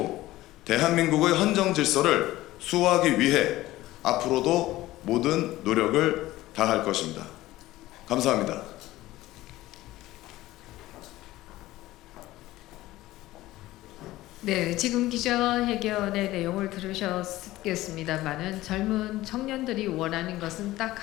대한민국의 헌정 질서를 수호하기 위해 앞으로도 모든 노력을 다할 것입니다. 감사합니다. 네, 지금 기자회견의 내용을 들으셨겠습니다만은 젊은 청년들이 원하는 것은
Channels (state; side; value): quieter; right; 16.7 dB